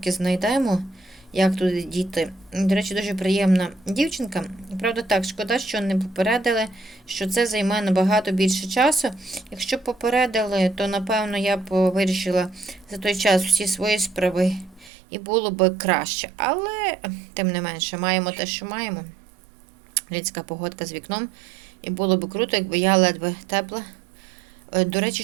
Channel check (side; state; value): left; drops out; at 14.9 s